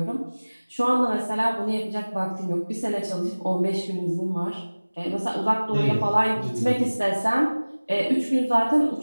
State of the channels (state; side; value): inverted; both; correlation -1.00